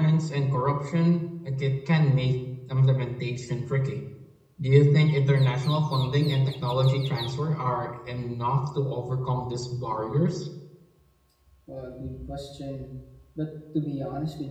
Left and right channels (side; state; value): both; identical; correlation 1.00